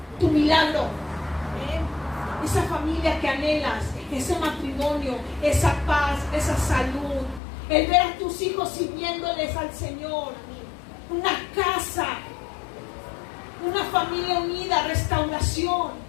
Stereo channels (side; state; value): right; drops out; at 7.4 s